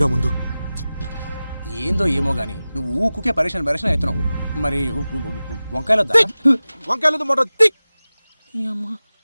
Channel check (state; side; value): inverted; both; correlation -0.96